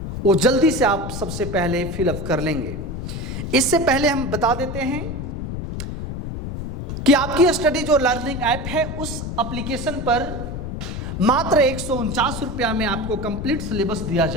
वो जल्दी से आप सबसे पहले फिलअप कर लेंगे। इससे पहले हम बता देते हैं कि आपकी स्टडी जो लर्निंग ऐप है, उस एप्लीकेशन पर मात्र 149 रुपया में आपको कंप्लीट सिलेबस दिया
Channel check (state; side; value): noise; left; rumble, 6 dB below the sound